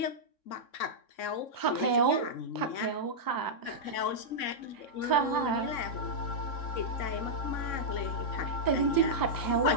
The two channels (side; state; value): right; late; 3.6 ms